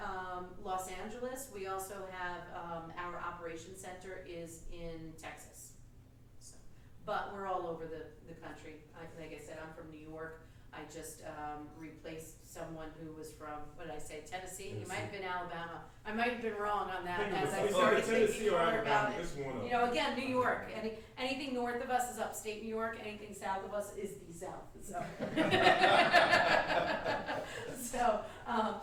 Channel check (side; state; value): both; identical; correlation 1.00